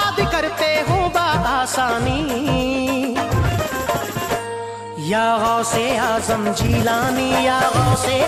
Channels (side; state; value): both; identical; correlation 1.00